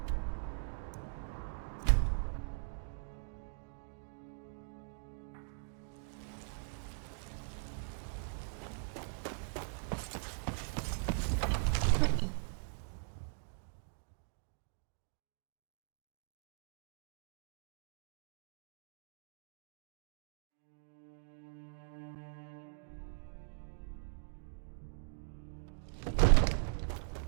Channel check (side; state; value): left; silent; digital silence